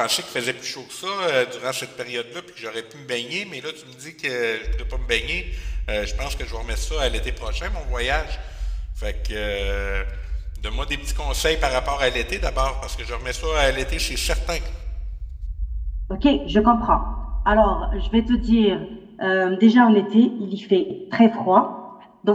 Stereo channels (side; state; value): both; identical; correlation 1.00